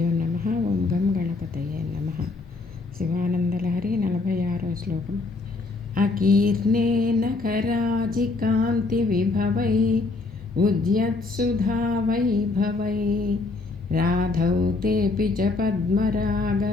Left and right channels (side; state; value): right; quieter; 3.7 dB